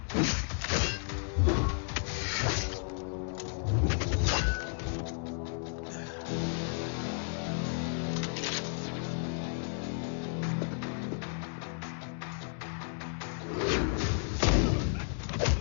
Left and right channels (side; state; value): right; silent; 56 dB below the other